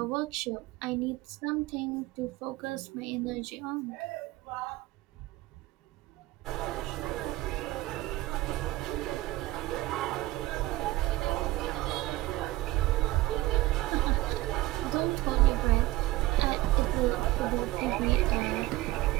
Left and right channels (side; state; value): left; quieter; 18.0 dB